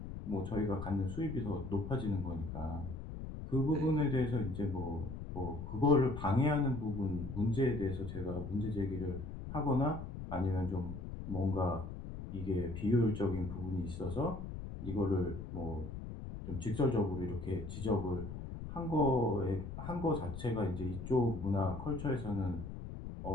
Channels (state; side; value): noise; left; rumble, 8 dB below the sound